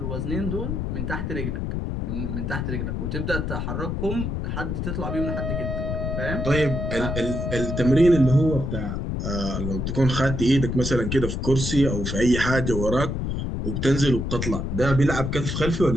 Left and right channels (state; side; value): noise; left; rumble, 2 dB below the sound